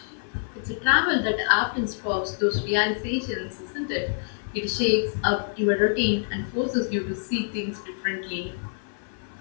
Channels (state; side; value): silent; right; digital silence